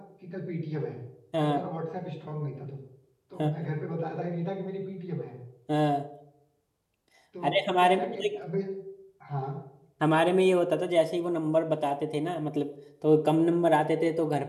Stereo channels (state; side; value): identical; both; correlation 1.00